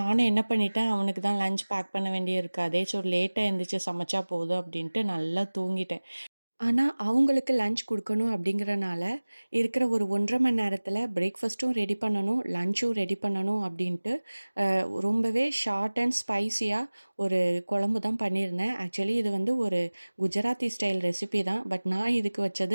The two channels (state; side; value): inverted; both; correlation -1.00